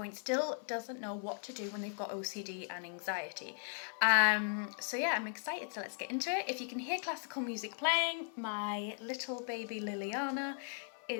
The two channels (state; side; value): silent; right; 53 dB below the other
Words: still doesn't know what to do when they've got OCD and anxiety. So yeah, I'm excited, so let's get into it. If you can hear classical music playing, my little baby Liliana